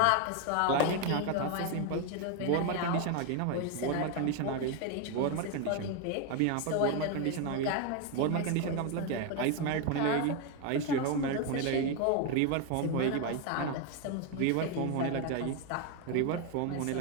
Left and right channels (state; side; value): different; both; correlation 0.01